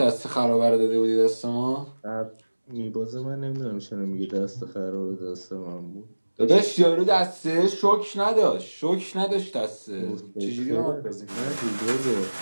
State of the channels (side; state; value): both; inverted; correlation -1.00